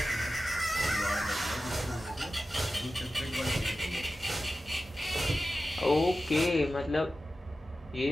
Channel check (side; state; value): both; normal; correlation 0.94